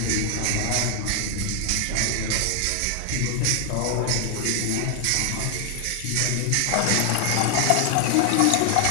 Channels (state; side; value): different; both; correlation 0.00